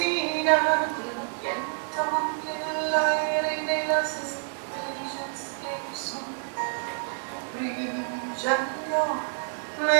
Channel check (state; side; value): silent; left; digital silence